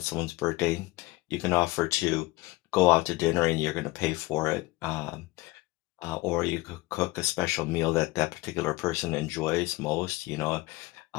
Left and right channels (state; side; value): quieter; right; 20.7 dB